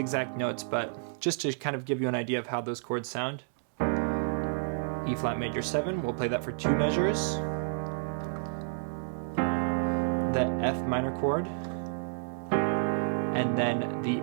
notes, but just to kind of give you an idea of how those chords sound. E flat major 7, we'll play that for 2 measures. The F minor chord, and then the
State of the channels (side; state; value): left; silent; digital silence